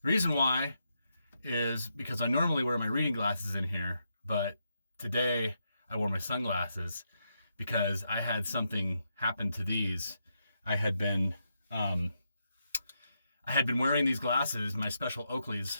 Reason why is because I normally wear my reading glasses in here, but today I wore my sunglasses because I had something happen to these. I had been wearing these glasses, my special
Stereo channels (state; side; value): inverted; both; correlation -0.82